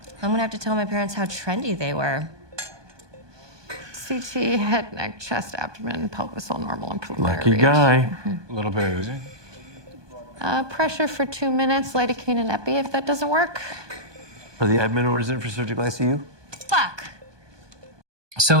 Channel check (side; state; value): left; late; 1.2 ms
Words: I'm gonna have to tell my parents how trendy they were. CT, head, neck, chest, abdomen, pelvis, all normal and preliminary Lucky read. guy. A little bit of oozing. Pressure for 2 minutes, lidocaine and epi if that doesn't work. Are the admin orders in for surgical ICU? Fuck.